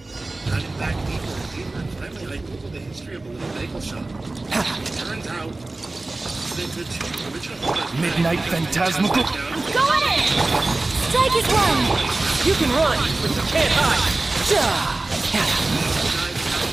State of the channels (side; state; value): left; quieter; 3.1 dB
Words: Diving back deeper and deeper, and finally I googled the history of a little bagel shop. It turns out that the two original owners... Midnight Phantasmical. Go at it! strike is one! You can run, but you can't hide.